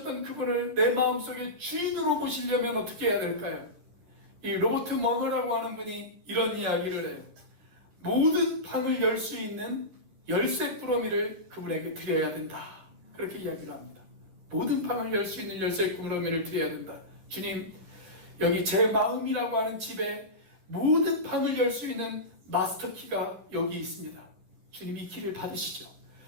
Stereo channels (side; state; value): left; late; 12 ms